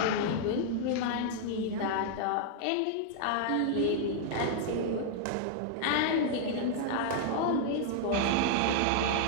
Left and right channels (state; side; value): different; both; correlation -0.01